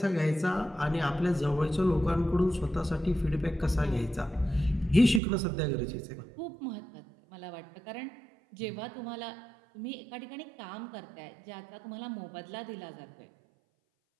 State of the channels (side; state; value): left; drops out; at 5.2 s